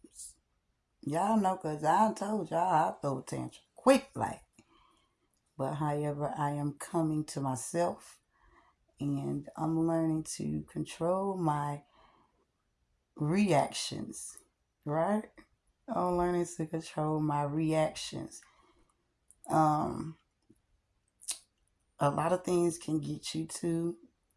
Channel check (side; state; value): both; identical; correlation 1.00